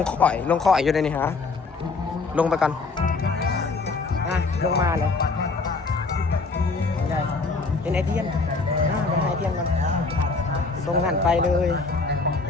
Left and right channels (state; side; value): quieter; right; 4.0 dB